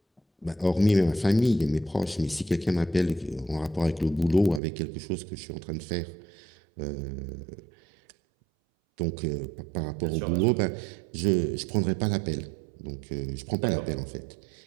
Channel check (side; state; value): left; drops out; at 4.6 s